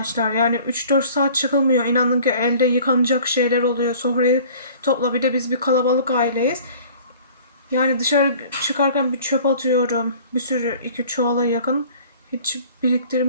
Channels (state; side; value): inverted; both; correlation -0.48